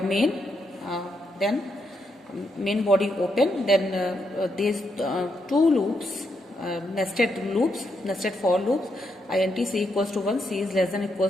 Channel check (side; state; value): both; normal; correlation 0.80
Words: main, then main body open, then these two loops, nested for loops, int c equals to 1, c is less than